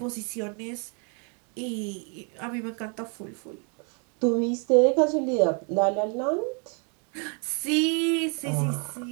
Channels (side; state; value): left; quieter; 37.6 dB